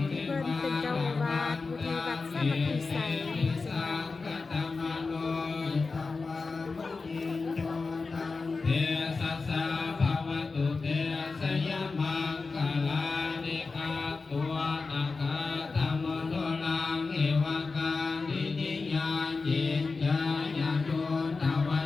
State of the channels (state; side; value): quieter; right; 4.2 dB